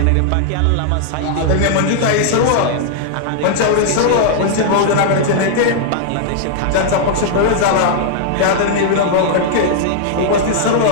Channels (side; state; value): both; different; correlation -0.01